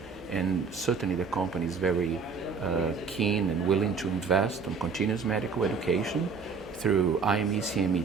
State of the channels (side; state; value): left; quieter; 5.3 dB